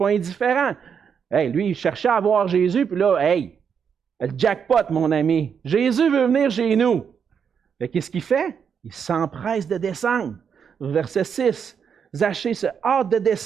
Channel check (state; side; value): quieter; left; 7.0 dB